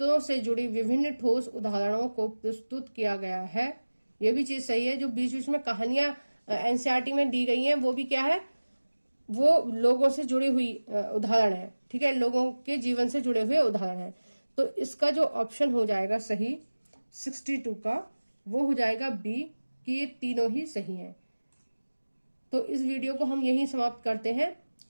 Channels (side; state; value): both; inverted; correlation -1.00